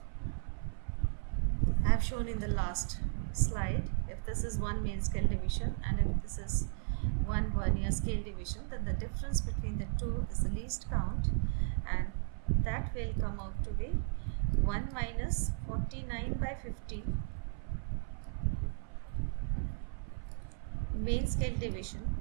I have shown in the last slide. If this is 1 main scale division and if this is 1 vernier scale division, then the difference between the two is the least count, and that will come out to be 1 minus 49 by 50 main scale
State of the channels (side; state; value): left; silent; 54 dB below the other